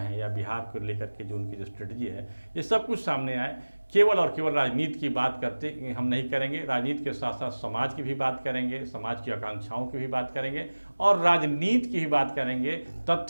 या बिहार को लेकर के जो उनकी जो स्ट्रेटजी है, ये सब कुछ सामने आए। केवल और केवल राजनीति की बात करते हम नहीं करेंगे, राजनीति के साथ साथ समाज की भी बात करेंगे, समाज की आकांक्षाओं की भी बात करेंगे और राजनीति की भी बात करेंगे,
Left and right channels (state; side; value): inverted; both; correlation -1.00